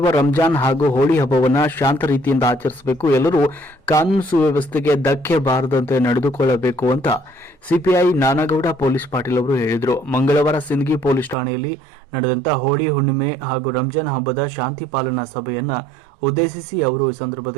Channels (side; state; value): left; drops out; at 11.4 s